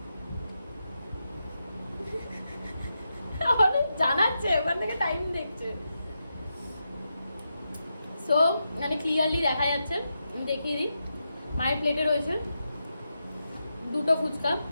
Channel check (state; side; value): inverted; both; correlation -0.87